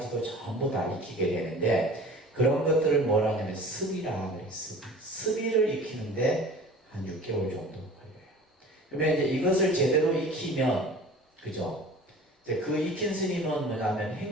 전부 다 익히게 되는데 그런 것들을 뭐라 하냐면 습이라 그래요. 습이를 익히는데 한 6개월 정도 걸려요. 그러면 이제 이것을 제대로 익히면 그죠? 이제 그 익힌 스님은 뭐냐면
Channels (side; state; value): both; normal; correlation 0.42